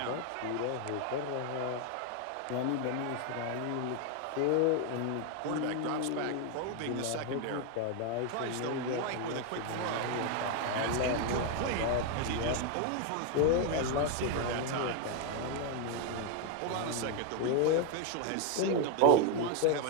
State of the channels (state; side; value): different; both; correlation 0.01